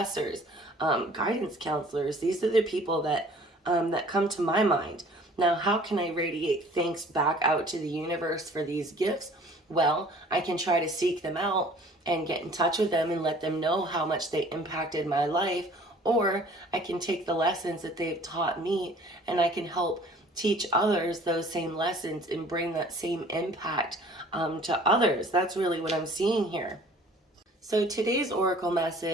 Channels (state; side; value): normal; both; correlation 0.51